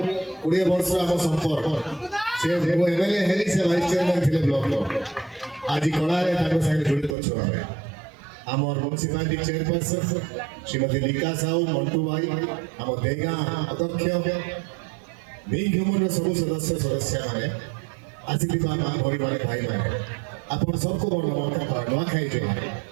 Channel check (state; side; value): drops out; left; at 7.2 s